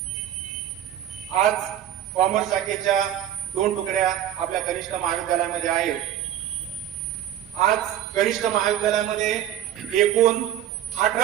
आज कॉमर्स शाखेच्या 2 तुकड्या आपल्या कनिष्ठ महाविद्यालयामध्ये आहेत. आज कनिष्ठ महाविद्यालयामध्ये एकूण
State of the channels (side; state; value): left; quieter; 11.3 dB